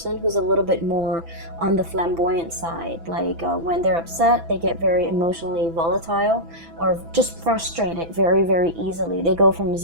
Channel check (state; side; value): late; left; 6.0 ms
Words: who's a little bit more on the flamboyant side. Like when they're upset, they get very emotionally volatile or just frustrated very, very easily. They go from